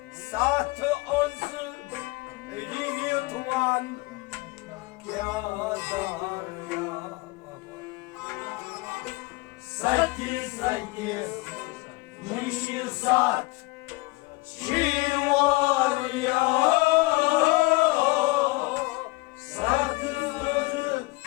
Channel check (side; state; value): right; quieter; 23.4 dB